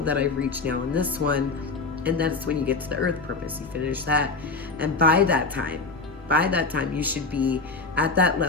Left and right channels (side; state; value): right; quieter; 3.8 dB